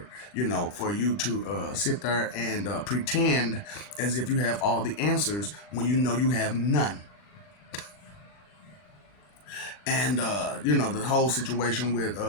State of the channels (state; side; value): late; right; 40 ms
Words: for you to sit there and pretend as if you have all the answers when you know you have none. And the whole situation with